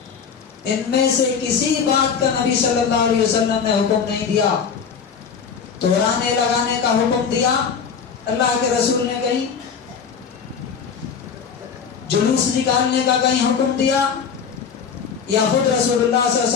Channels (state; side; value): quieter; right; 6.5 dB